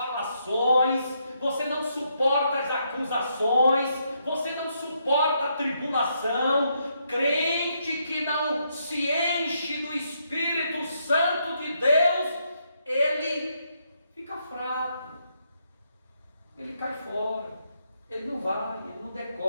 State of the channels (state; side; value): inverted; both; correlation -0.77